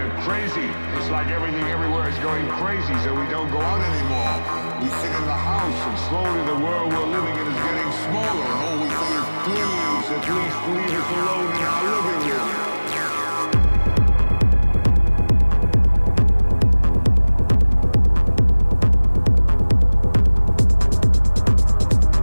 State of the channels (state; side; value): inverted; both; correlation -1.00